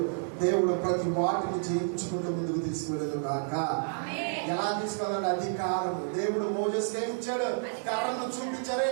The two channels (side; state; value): left; silent; digital silence